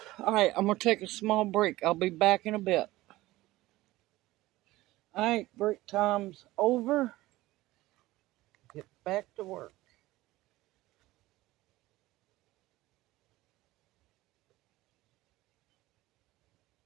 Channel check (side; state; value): left; quieter; 17.9 dB